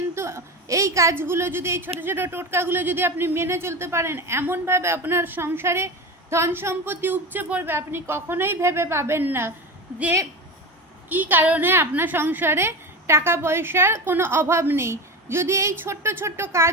এই কাজগুলো যদি, এই ছোট ছোট টোটকাগুলো যদি আপনি মেনে চলতে পারেন, এমনভাবে আপনার সংসারে ধন সম্পত্তি উপচে পড়বে আপনি কখনোই ভেবে পাবেন না যে কি কারণে আপনার সংসারে টাকা পয়সার কোনো অভাব নেই। যদি এই ছোট্ট ছোট্ট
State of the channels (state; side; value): normal; both; correlation 0.24